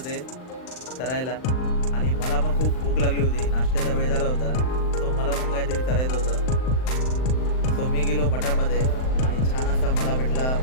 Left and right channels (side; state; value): right; late; 39 ms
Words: चरायला आणि मला पण खूप भूक लागली होती. नाश्त्याचा वेळ झाला होता. सो मला पण काहीतरी चरायचं होतं. सो मी गेलो मठामध्ये आणि छान असा मला भेटला